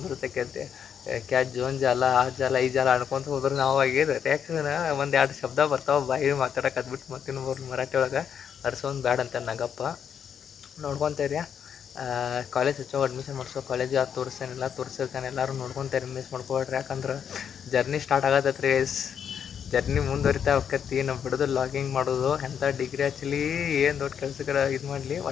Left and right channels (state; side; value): quieter; right; 8.0 dB